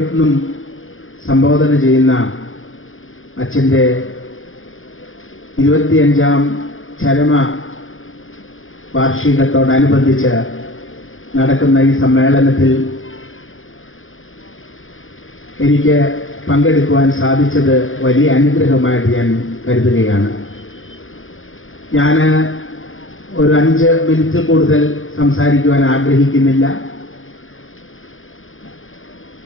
സംബോധന ചെയ്യുന്ന അച്ഛൻ്റെ 25ാം ചരമ വാർഷികത്തോടനുബന്ധിച്ച് നടക്കുന്ന ഈ സമ്മേളനത്തിൽ എനിക്ക് പങ്കെടുക്കുവാൻ സാധിച്ചത് വലിയ അനുഗ്രഹമായിട്ട് ഞാൻ കരുതുകയാണ്. ഞാൻ ഒരു 5 മിനിറ്റ് കൂടുതൽ സംസാരിക്കുവാൻ ആഗ്രഹിക്കുന്നില്ല.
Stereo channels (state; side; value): late; right; 0.59 ms